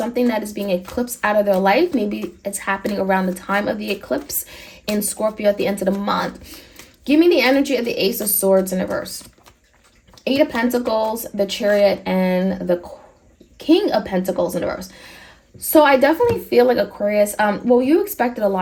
that is being eclipsed out of their life. Maybe it's happening around the time of the eclipse in Scorpio at the end of the month. Give me the energy of the Ace of Swords in reverse. Eight of Pentacles, the Chariot, and the King of Pentacles in reverse. So I definitely feel like Aquarius, well, you expected a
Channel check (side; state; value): both; identical; correlation 1.00